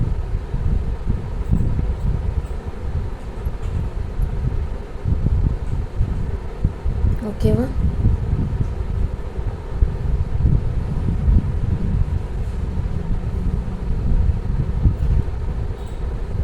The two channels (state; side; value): identical; both; correlation 1.00